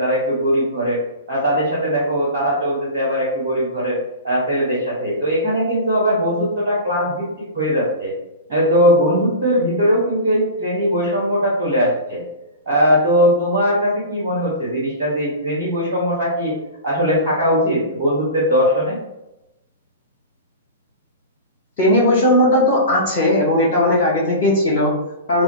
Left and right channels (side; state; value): both; inverted; correlation -0.31